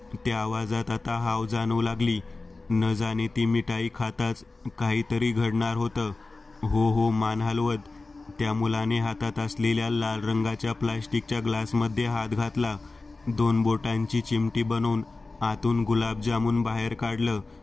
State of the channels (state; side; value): quieter; right; 3.5 dB